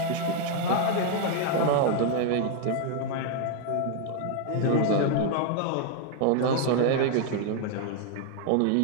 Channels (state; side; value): different; both; correlation 0.00